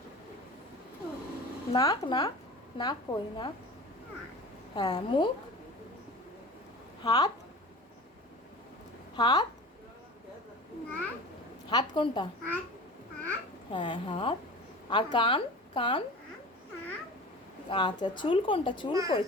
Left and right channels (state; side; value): normal; both; correlation 0.37